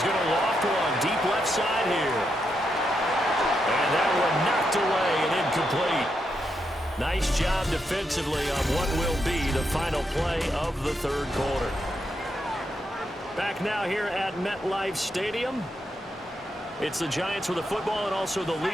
going to loft one deep left side here. And that one knocked away and incomplete. Nice job defensively on what will be the final play of the third quarter. Back now here at MetLife Stadium. It's the Giants with the football and also the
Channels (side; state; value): both; normal; correlation 0.82